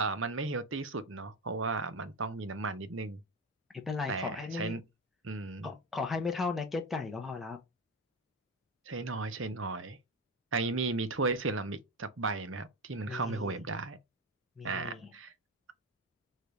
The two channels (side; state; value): both; normal; correlation 0.18